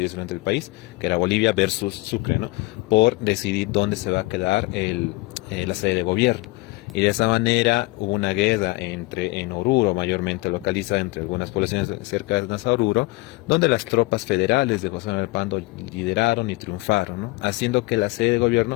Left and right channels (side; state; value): right; quieter; 22.2 dB